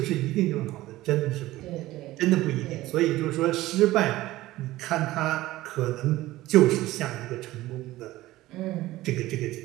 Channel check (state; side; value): quieter; left; 16.9 dB